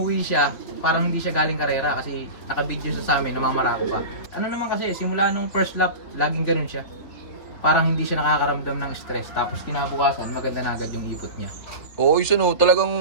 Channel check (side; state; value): right; late; 3.4 ms